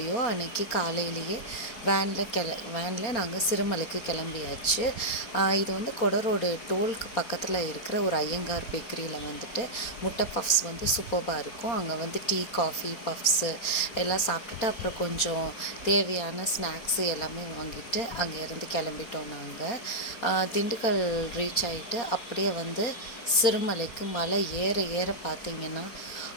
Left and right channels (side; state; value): right; late; 4.3 ms